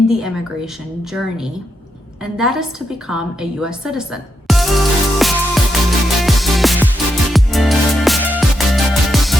the immigration journey, and that is to become a US citizen.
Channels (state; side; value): normal; both; correlation 0.82